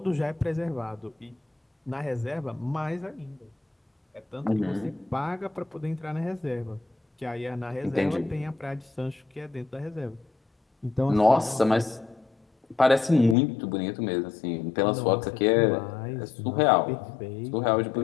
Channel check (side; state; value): right; drops out; at 13.4 s